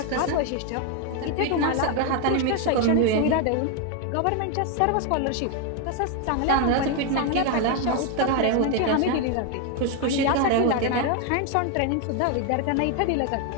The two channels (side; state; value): both; different; correlation 0.01